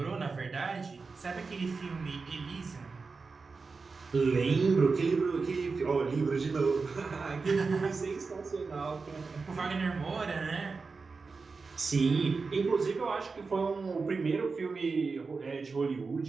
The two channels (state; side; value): quieter; left; 4.4 dB